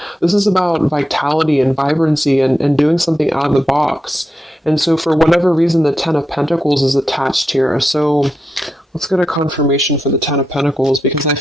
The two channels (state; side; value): normal; both; correlation 0.87